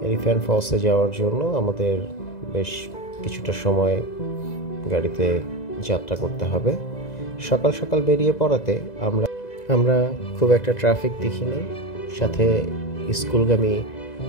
এলিফ্যান্ট ফলসে যাওয়ার জন্য আমাদের বেশ কিছুটা সময় গাড়িতে যাত্রা করতে হবে। সকাল সকাল বেরিয়ে পড়াতে আমরা খুব একটা ট্রাফিক দেখিনি। সাথে স্কুলগামী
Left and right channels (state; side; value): late; right; 2.0 ms